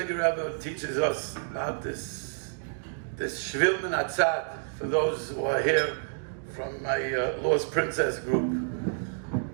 Rebbe teaches us about this Shvil min Hatzad, for those who are here from my Lost Princess group.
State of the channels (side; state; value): left; silent; digital silence